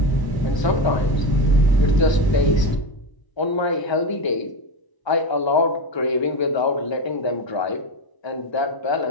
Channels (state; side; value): late; right; 1.2 ms